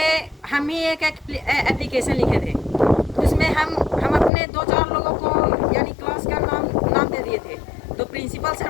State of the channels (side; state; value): right; drops out; at 4.3 s